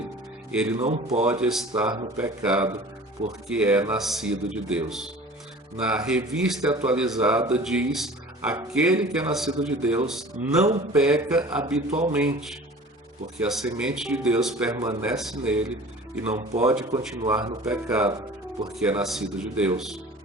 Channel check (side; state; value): both; normal; correlation 0.43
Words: Ele não pode estar no pecado, porque é nascido de Deus. Na Revista Atualizada diz: aquele que é nascido de Deus não peca habitualmente, porque a semente de Deus permanece nele e não pode continuar no pecado, porque é nascido de Deus.